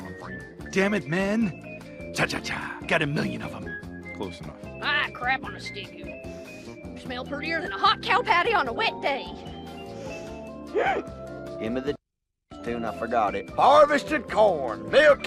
for you. Damn it, man. Cha-cha-cha. Got a million of them. Close enough. Ah, crap on a stick. You smell prettier than a hot cow patty on a wet day. Give me the tune, I forgot it. Harvesting corn,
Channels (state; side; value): identical; both; correlation 1.00